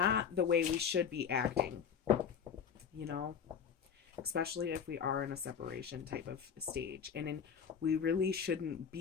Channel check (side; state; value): right; quieter; 7.2 dB